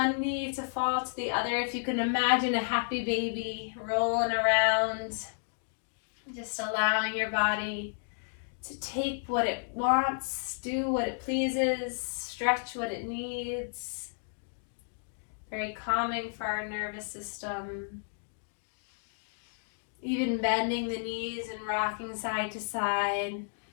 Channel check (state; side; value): silent; right; digital silence